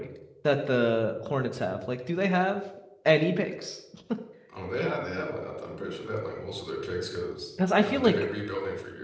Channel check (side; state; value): both; identical; correlation 1.00